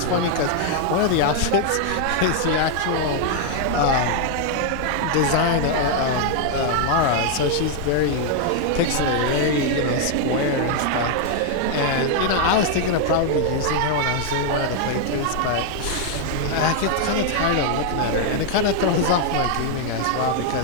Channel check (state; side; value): different; both; correlation 0.00